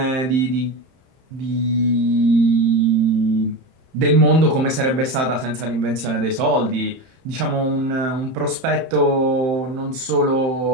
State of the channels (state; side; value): late; left; 31 ms